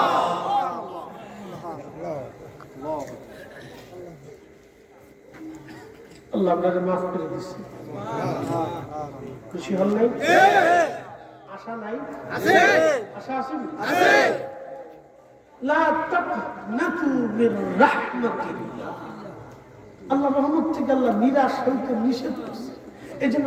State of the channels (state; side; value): identical; both; correlation 1.00